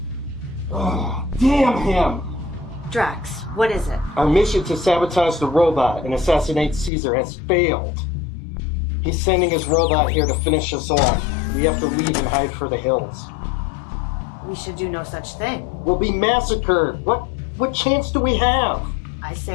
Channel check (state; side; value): drops out; right; at 6.9 s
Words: Oh, damn him! Drax, what is it? Our mission to sabotage the robot and assassinate Caesar has failed. He's sending his robot here to finish us off. We have to leave and hide for the hills. We should do no such thing. We'll be massacred. What chance do we have? I